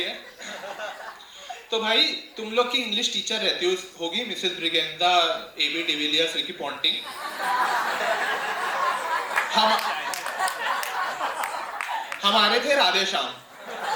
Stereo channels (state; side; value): identical; both; correlation 1.00